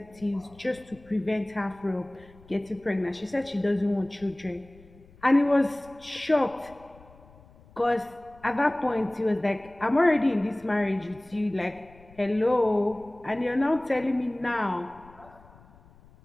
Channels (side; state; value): left; noise; rumble, 25 dB below the sound